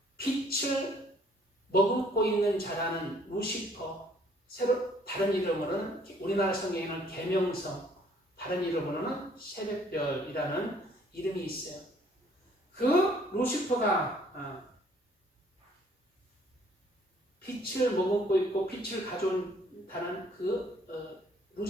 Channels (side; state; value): both; normal; correlation 0.61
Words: 빛을 머금고 있는 자라는 루시퍼, 다른 이름으로는 우리나라 성경에는 계명성, 다른 이름으로는 새벽별이라는 이름이 있어요. 그 루시퍼가 빛을 머금고 있고 빛을 가져온다는 그